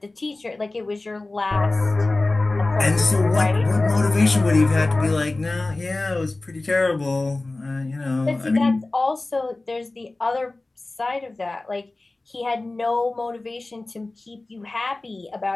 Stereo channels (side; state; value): right; quieter; 3.0 dB